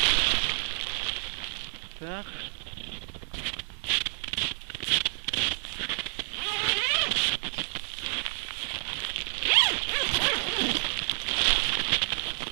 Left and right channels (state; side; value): silent; left; digital silence